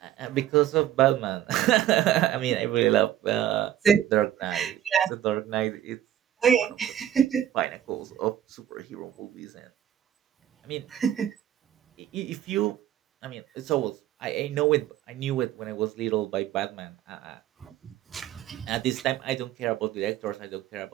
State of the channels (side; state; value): left; quieter; 11.4 dB